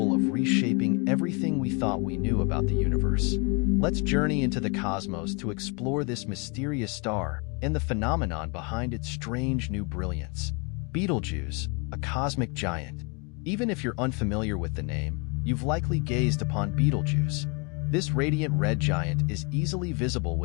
of reshaping everything we thought we knew about the universe. Let's journey into the cosmos to explore this mysterious star and the phenomenon behind its strange new brilliance. Betelgeuse, a cosmic giant. Even if you're unfamiliar with the name, you've likely gazed upon Betelgeuse. This radiant red giant is easily visible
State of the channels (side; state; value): right; quieter; 32.3 dB